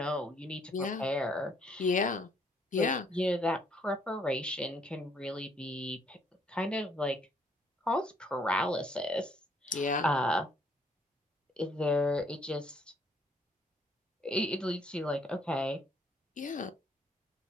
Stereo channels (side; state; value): both; normal; correlation 0.66